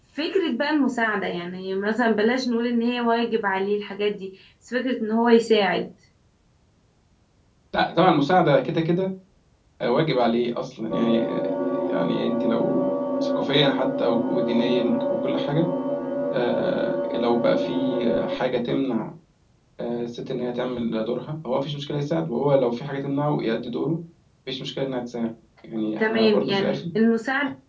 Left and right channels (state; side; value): identical; both; correlation 1.00